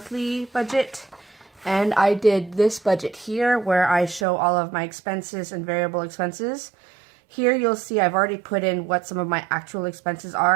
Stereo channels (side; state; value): left; drops out; at 4.2 s